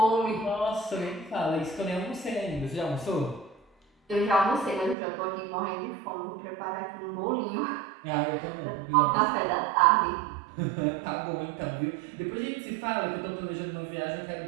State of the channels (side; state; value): left; drops out; at 5.0 s